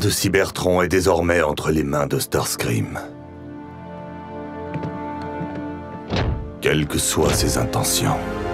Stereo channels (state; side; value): identical; both; correlation 1.00